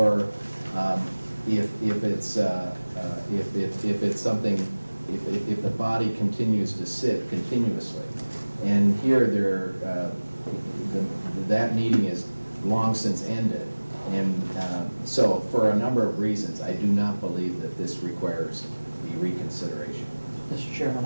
if it's something, if the body continues to sit continuously. And here that meeting is long since ended. And so for a number of reasons, I do not believe that this requires the reconsideration. Mr. Chairman,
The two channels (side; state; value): both; inverted; correlation -1.00